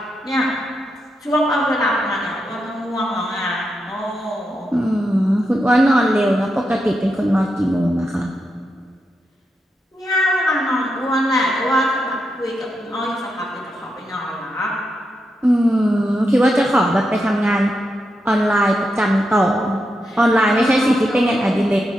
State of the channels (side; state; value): both; normal; correlation 0.85